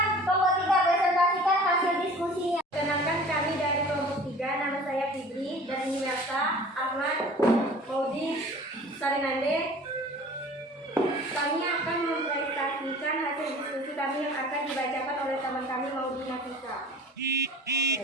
kelompok 3 presentasikan hasil diskusinya. Perkenalkan kami dari kelompok 3, nama saya Fitri dan ini Melsa, Ahmad,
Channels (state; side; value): normal; both; correlation 0.44